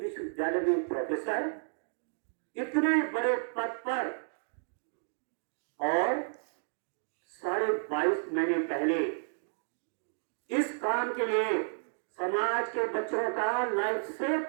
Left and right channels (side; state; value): left; silent; digital silence